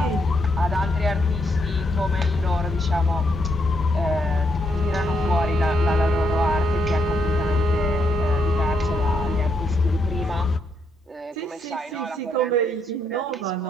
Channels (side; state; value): both; normal; correlation 0.76